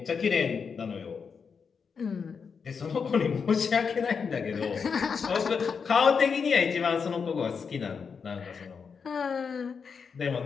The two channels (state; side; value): quieter; right; 5.9 dB